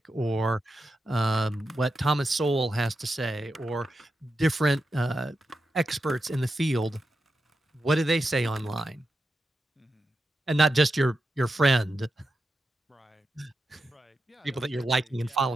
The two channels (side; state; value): both; normal; correlation 0.88